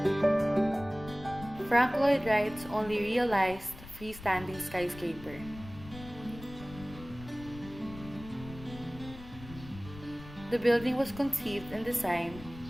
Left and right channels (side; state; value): left; noise; rumble, 15 dB below the sound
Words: Frank Lloyd Wright's only realized freestanding skyscraper. The building was conceived and designed